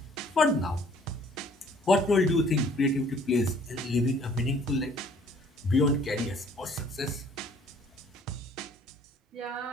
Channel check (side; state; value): both; normal; correlation 0.57